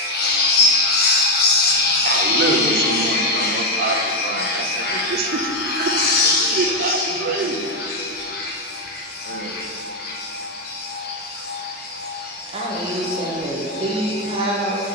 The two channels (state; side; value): normal; both; correlation 0.05